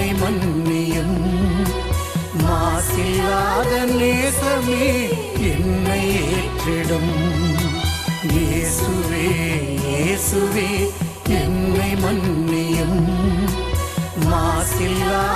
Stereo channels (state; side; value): identical; both; correlation 1.00